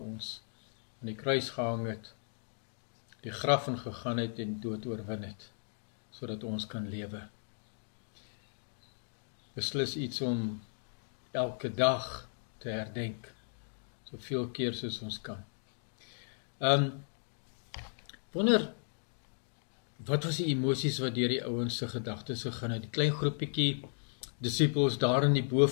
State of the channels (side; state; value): right; silent; digital silence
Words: ons aan die kruis gehang het, die graf ingegaan het en dood oorwin het, sodat ons kan lewe. Beslis iets om elke dag te herdenk, soveel keer soos ons kan. Wonder, wat was die emosies wat deur die ouens se gedagtes gegaan het? Die klein groepietjie disippels daar in die